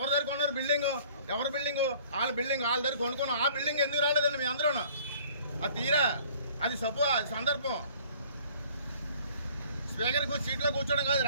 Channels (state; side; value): inverted; both; correlation -0.53